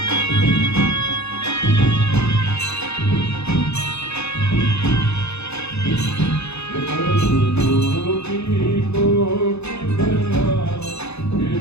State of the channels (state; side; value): late; right; 0.80 ms